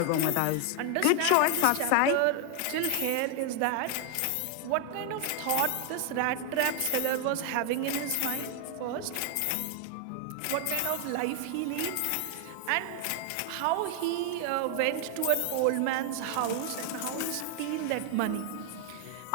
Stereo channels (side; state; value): both; different; correlation 0.00